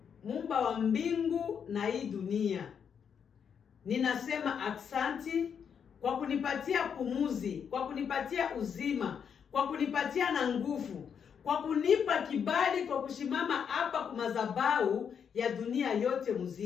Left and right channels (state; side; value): quieter; right; 7.3 dB